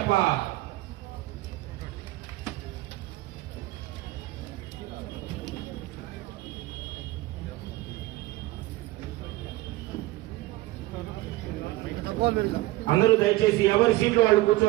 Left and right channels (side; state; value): left; quieter; 18.1 dB